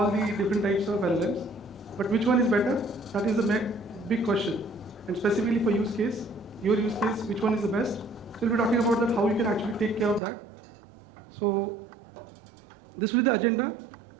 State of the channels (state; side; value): drops out; left; at 10.2 s